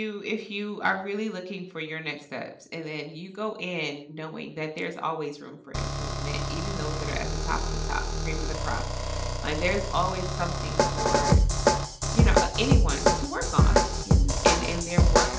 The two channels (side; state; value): both; identical; correlation 1.00